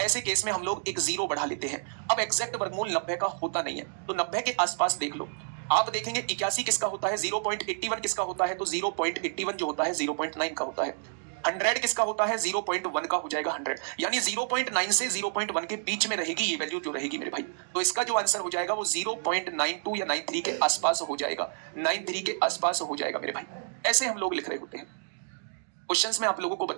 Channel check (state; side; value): silent; left; digital silence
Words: ऐसे केस में हम लोग एक जीरो बढ़ा लेते हैं। अब एग्जैक्ट वर्गमूल 90 का होता नहीं है, तो 90 के आसपास देख लो। आप देखेंगे 81 किसका होता है, 0.81 किसका होता है, तो 0.81 जो होता है 0.9 का होता है। 100 किसका होता है, 0.1 का हो जाएगा 100, यानी 0.9 से 0.1 के बीच में रहेगी ये वैल्यू जो रहेगी मेरे भाई। तो इसका जो आंसर हो जाएगा वो 0.92 या 93 के आसपास हो जाएगा, 93 के आसपास हो जाएगा मेरे भाई। ऐसे हम लोग लिख रहे होते हैं। क्वेश्चंस में आप लोगों को